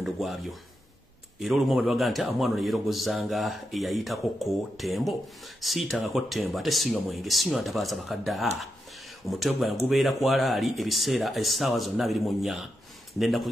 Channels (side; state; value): both; normal; correlation 0.85